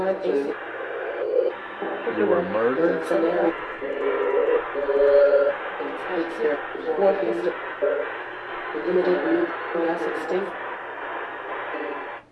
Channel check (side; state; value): both; identical; correlation 1.00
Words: blue. You were murdered? Scenario. It's here. What is the limited view gas extinct?